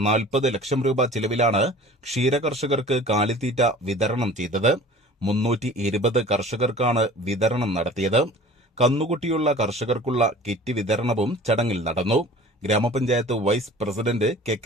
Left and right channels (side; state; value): both; normal; correlation 0.44